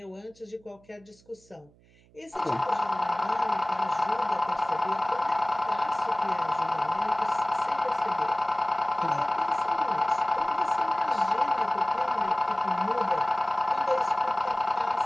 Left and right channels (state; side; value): noise; right; hum, 29 dB below the sound